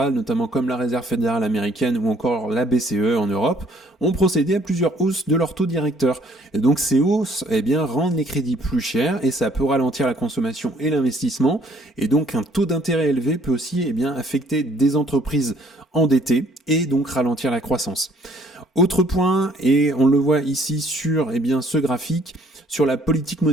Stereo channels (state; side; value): normal; both; correlation 0.62